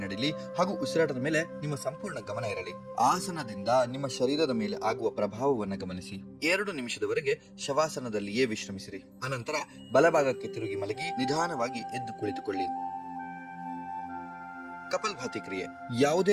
ನಡೀಲಿ ಹಾಗೂ ಉಸಿರಾಟದ ಮೇಲೆ ನಿಮ್ಮ ಸಂಪೂರ್ಣ ಗಮನ ಇರಲಿ. ಆಸನದಿಂದ ನಿಮ್ಮ ಶರೀರದ ಮೇಲೆ ಆಗುವ ಪ್ರಭಾವವನ್ನು ಗಮನಿಸಿ. 2 ನಿಮಿಷದವರೆಗೆ ಶವಾಸನದಲ್ಲಿಯೇ ವಿಶ್ರಮಿಸಿರಿ. ಅನಂತರ ಬಲಭಾಗಕ್ಕೆ ತಿರುಗಿ ಮಲಗಿ ನಿಧಾನವಾಗಿ ಎದ್ದು ಕುಳಿತುಕೊಳ್ಳಿ. ಕಪಾಲಭಾತಿ ಕ್ರಿಯೆ.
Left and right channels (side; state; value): both; identical; correlation 1.00